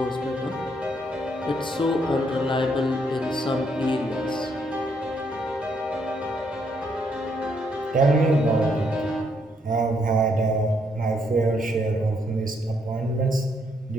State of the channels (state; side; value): normal; both; correlation 0.73